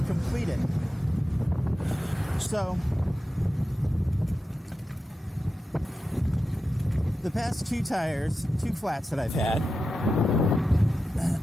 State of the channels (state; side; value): normal; both; correlation 0.91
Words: complete it. So, the past two tires, two flats that I've had,